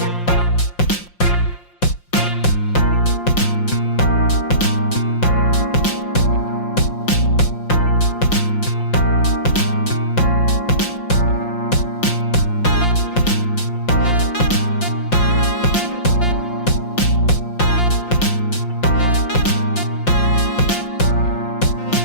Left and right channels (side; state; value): right; late; 5.7 ms